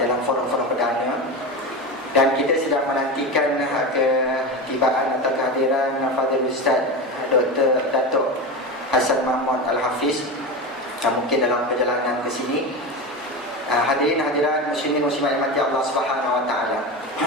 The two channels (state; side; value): normal; both; correlation 0.22